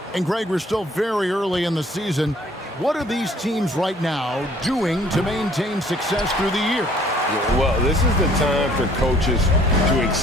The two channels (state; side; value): normal; both; correlation 0.58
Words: And Greg, we're still very early in the season. What are these teams right now doing to maintain success through the year? Well, this is the time for coaches to